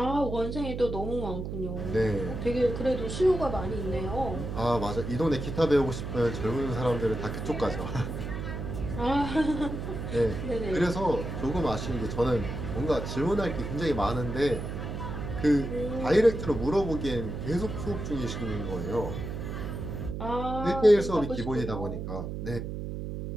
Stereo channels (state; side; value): noise; right; hum, 5 dB below the sound